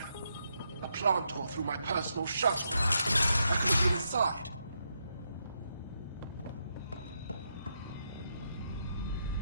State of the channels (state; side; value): inverted; both; correlation -0.81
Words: A plant tore through my personal shuttle. I could have been inside.